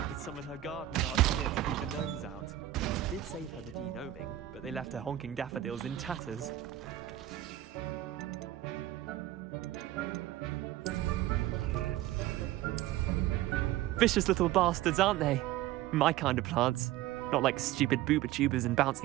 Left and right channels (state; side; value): quieter; left; 14.0 dB